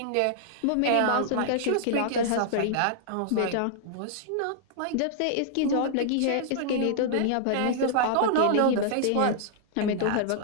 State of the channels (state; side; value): different; both; correlation -0.01